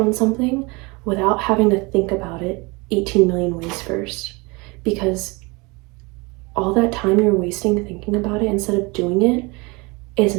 something without having to think about it 18 million ways first. Because all that time you're wasting thinking about it instead of doing it is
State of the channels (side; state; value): left; quieter; 26.5 dB